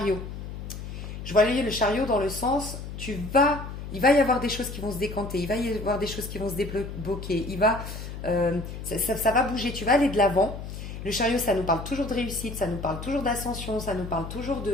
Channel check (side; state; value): left; noise; hum, 9 dB below the sound